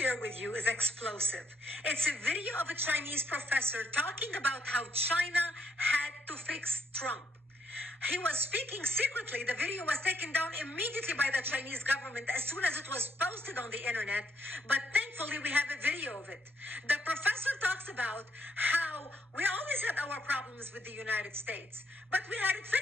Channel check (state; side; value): normal; both; correlation 0.73